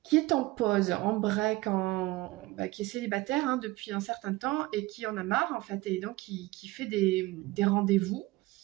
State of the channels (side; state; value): left; quieter; 19.7 dB